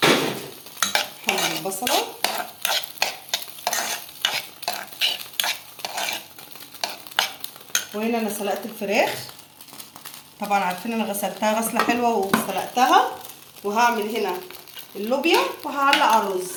حمر البصلة، وهنا انا سلقت الفراخ. طبعا عارفين انا غسلتها غسله حلوه وسلقتها، وهعمل هنا اللوبيا وهعلق على الرز.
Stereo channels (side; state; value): both; identical; correlation 1.00